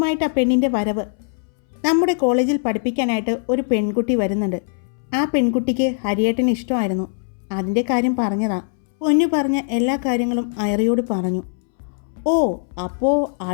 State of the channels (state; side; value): silent; right; 65 dB below the other